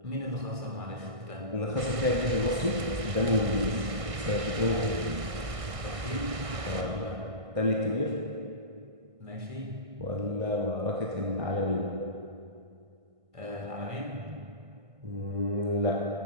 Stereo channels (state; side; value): late; left; 1.6 ms